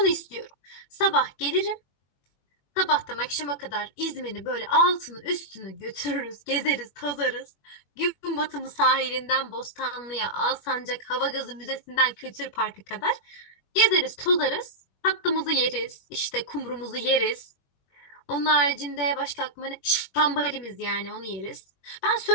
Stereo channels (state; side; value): late; right; 21 ms